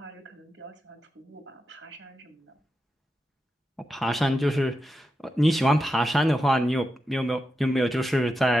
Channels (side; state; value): both; normal; correlation 0.88